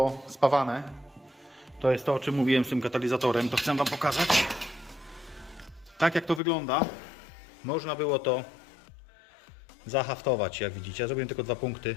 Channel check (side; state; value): right; drops out; at 6.4 s